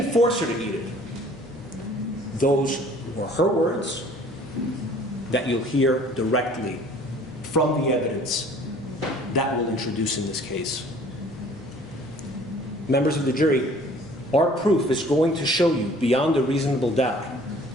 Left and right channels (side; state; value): both; normal; correlation 0.52